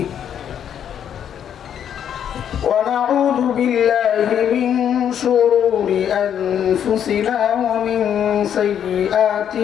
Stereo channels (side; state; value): right; quieter; 9.1 dB